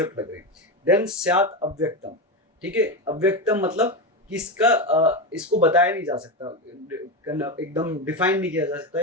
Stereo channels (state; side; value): normal; both; correlation 0.15